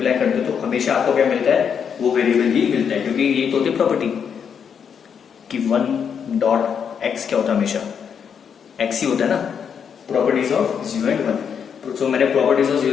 करते हो, तो हमेशा आपको क्या मिलता है, वो वेरिएबल ही मिलता है, क्योंकि ये तो होती है प्रॉपर्टी कि 1 डॉट एक्स क्या होता है, हमेशा एक्स ही होता है ना, प्रॉपर्टीज ऑफ 0 एंड 1। तो मैंने प्रॉपर्टीज ऑफ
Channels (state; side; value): quieter; right; 7.3 dB